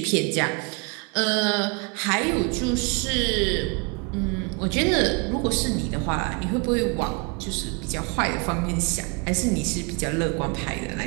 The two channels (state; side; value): quieter; left; 32.4 dB